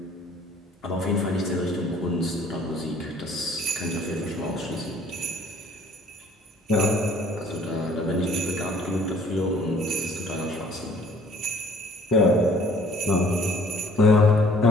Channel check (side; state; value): both; normal; correlation 0.57